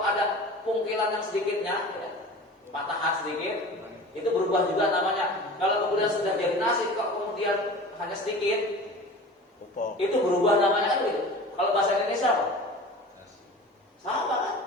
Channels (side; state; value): both; normal; correlation 0.38